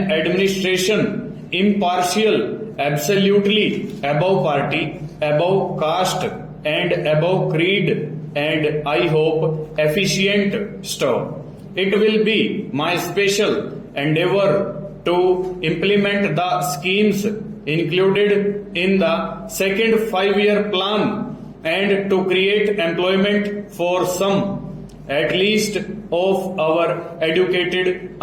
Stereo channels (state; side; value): identical; both; correlation 1.00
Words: administration impartial, absolutely above party, above caste and above creed, and I hope efficient. Stop. It will be my special endeavor to implement the schemes included in the second 5-year plan and to create employment for some, at least, of our educated